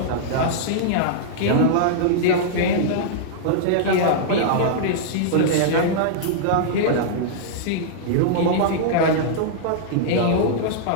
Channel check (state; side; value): different; both; correlation -0.02